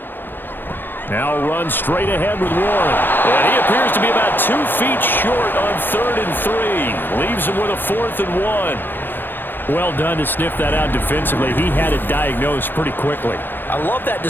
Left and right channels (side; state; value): right; late; 0.096 ms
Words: Now run straight ahead with Warren. And he appears to be about 2 feet short on 3rd and 3. Leaves him with a 4th and 1. Well done to sniff that out defensively. He had it diagnosed pretty quickly. I love that